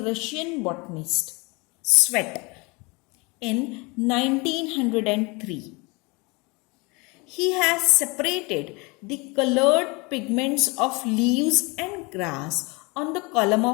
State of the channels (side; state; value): right; quieter; 27.4 dB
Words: Russian botanist Svet in 1903. He has separated the colored pigments of leaves and grass on the column